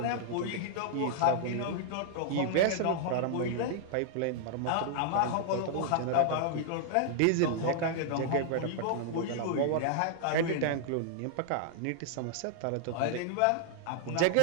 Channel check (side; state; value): both; different; correlation -0.01